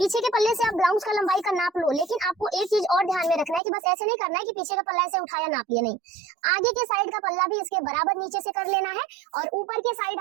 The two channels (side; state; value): left; drops out; at 3.6 s